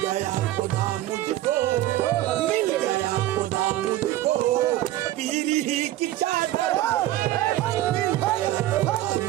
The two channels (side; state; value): left; quieter; 14.6 dB